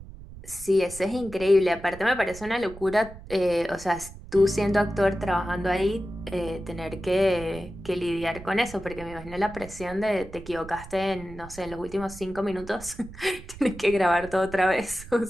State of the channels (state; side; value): noise; right; rumble, 16 dB below the sound